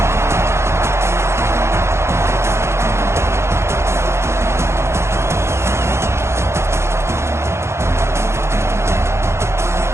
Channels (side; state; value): left; late; 0.13 ms